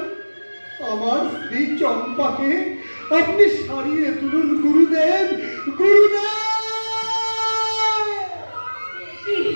আমার স্ত্রী চম্পাকে আপনি সারিয়ে তুলুন গুরুদেব, গুরুদেব।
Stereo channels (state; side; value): inverted; both; correlation -1.00